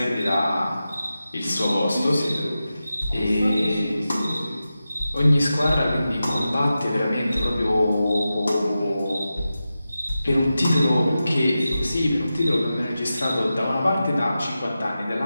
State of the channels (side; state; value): both; inverted; correlation -0.92